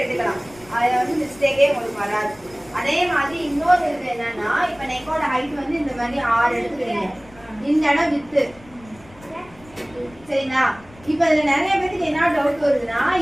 அதுல வந்து மிஸ்டேக்கே உங்களுக்கு வராது. அதே மாதிரி இன்னொரு இது என்னன்னா, இப்ப நெக்கோட ஹைட் வந்து இந்த மாதிரி 6 எடுத்துக்கிறீங்க, இந்த இடம் வித்து சரிங்களா. இப்ப இதுல நிறைய பேருக்கு என்ன டவுட் வருதுன்னா,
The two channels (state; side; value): noise; left; rumble, 24 dB below the sound